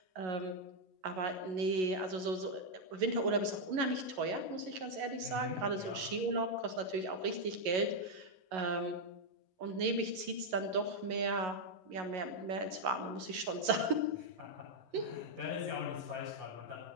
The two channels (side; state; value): left; late; 11 ms